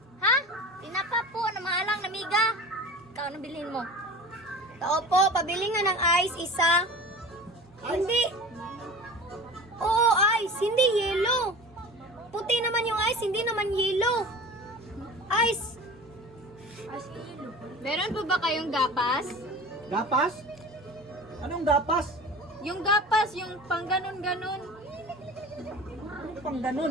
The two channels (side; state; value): both; normal; correlation 0.36